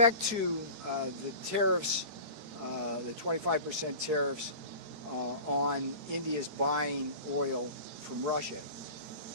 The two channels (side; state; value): left; late; 13 ms